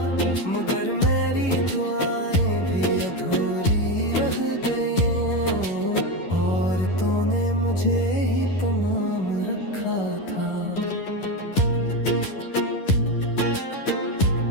मगर मेरी दुआएं भी अधूरी रह गई, और तूने मुझे ही तमाम रखा था।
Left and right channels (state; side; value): late; right; 11 ms